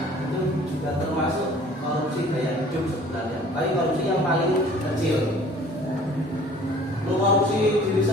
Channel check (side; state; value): both; normal; correlation 0.51